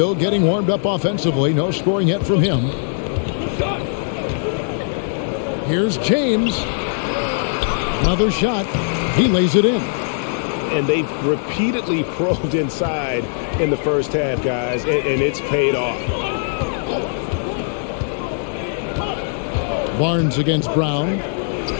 getting warmed up offensively. No scoring yet from him. Here's James. Another shot. He lays it in. And they've repeatedly probed inside in the first half, guys, and it's paid off. Barnes against Brown.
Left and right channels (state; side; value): silent; right; digital silence